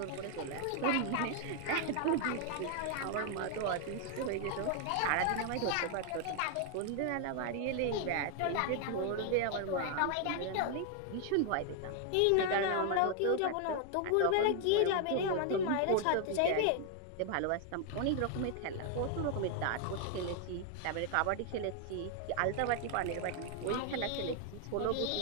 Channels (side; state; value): both; different; correlation 0.00